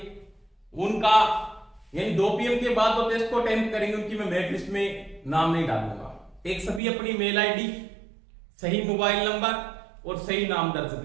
उनका, यानी 2 PM के बाद तो टेस्ट को अटेम्प्ट करेंगे उनकी मैं मेरिट लिस्ट में नाम नहीं डालूंगा। एक सभी अपनी मेल आईडी, सही मोबाइल नंबर और सही नाम दर्ज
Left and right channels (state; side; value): drops out; left; at 6.8 s